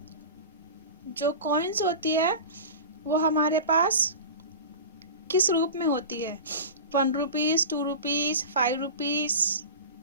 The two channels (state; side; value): inverted; both; correlation -0.31